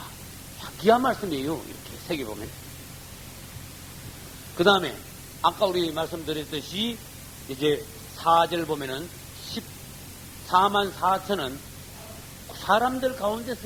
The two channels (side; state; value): both; identical; correlation 1.00